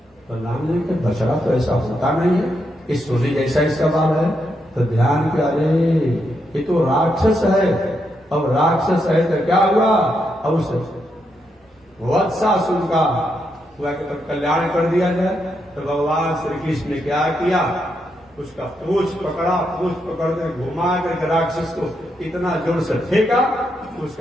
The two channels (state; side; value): normal; both; correlation 0.81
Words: बलराम ने कहा, बछड़ा तो ऐसा होता नहीं है, इस सोने जैसा इसका बाल है। तो ध्यान के, अरे ये तो राक्षस है। अब राक्षस है तो क्या हुआ? अब उस वत्सासुर का कल्याण कर दिया जाए। तो भगवान श्री कृष्ण ने क्या किया? उसका पूंछ पकड़ा, पूंछ पकड़ कर घुमा कर राक्षस को इतना जोर से फेंका,